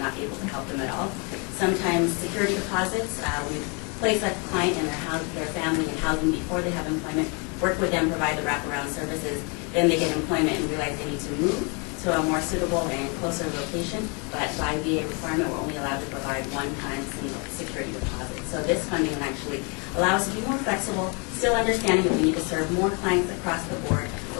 able to help them at all. Sometimes security deposits, we place a client and their family in housing before they have employment, work with them, provide the wraparound services, then they get employment and realize they need to move to a more suitable and closer location, but by VA requirement, we're only allowed to provide one-time single security deposit. So this funding will actually allow us to be more flexible, still understanding that we need to serve more clients across the board,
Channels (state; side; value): quieter; right; 33.5 dB